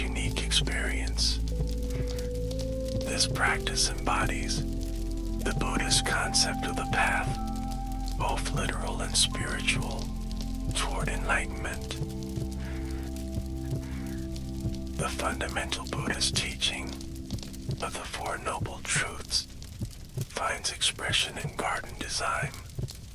experience. This practice embodies the Buddhist concept of the path, both literal and spiritual, toward enlightenment. The fundamental Buddhist teaching of the Four Noble Truths finds expression in garden design.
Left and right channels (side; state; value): both; identical; correlation 1.00